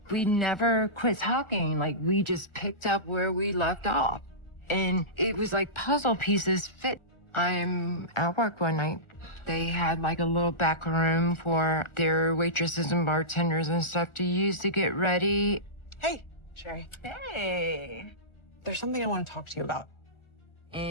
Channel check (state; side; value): late; right; 1.4 ms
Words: We never quit talking. Like, we just picked up where we left off. And it was like puzzle pieces fit. I'm at work one night. They had like a little back room for their waitresses and bartenders and stuff to use to get ready. Hey, Sherry. Hey. There's something I want to talk to you about.